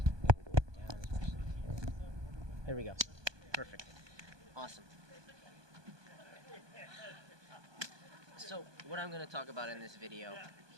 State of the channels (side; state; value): left; late; 1.2 ms